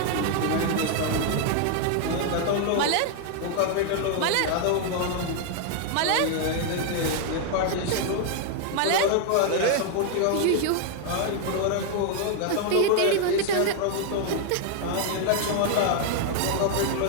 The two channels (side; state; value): both; different; correlation 0.00